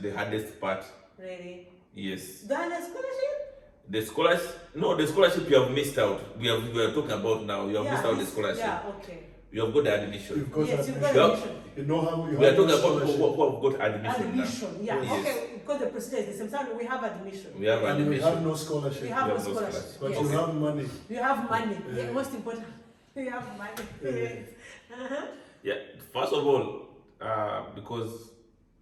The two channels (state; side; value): identical; both; correlation 1.00